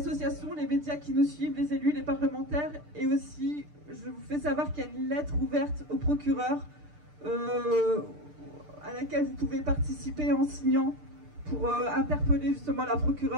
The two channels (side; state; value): left; late; 6.7 ms